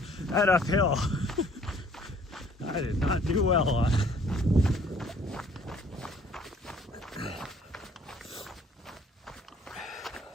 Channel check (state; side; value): normal; both; correlation 0.58